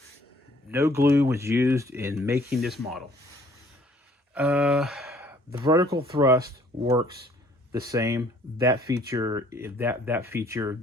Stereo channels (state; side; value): normal; both; correlation 0.59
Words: No glue was used in making this model. The vertical thrust works the same. That feature